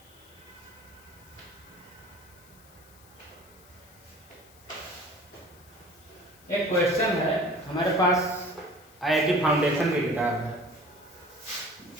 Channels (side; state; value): left; noise; hiss, 25 dB below the sound